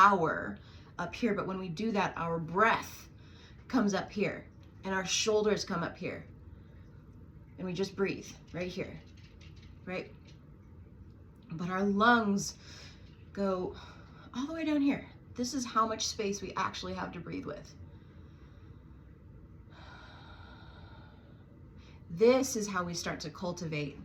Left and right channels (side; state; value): both; identical; correlation 1.00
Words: up here, but when we do that, our breath comes up here and our shoulders come up here. And we just breathe right here, right? But our lungs go all the way down here. This is how much space we actually have to breathe with. This is how we start to cultivate